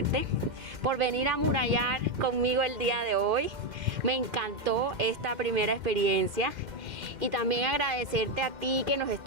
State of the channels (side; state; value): left; late; 2.1 ms